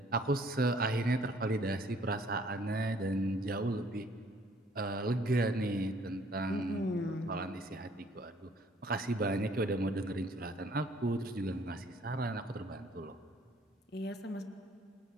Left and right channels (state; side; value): normal; both; correlation 0.60